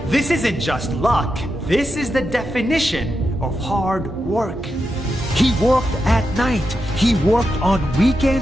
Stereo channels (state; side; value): normal; both; correlation 0.87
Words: This isn't just luck. This is the definition of hard work. He worked at night. He worked on